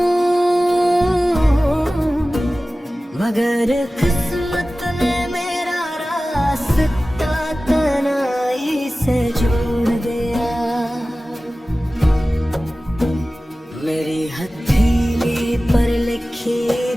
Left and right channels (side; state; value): both; normal; correlation 0.96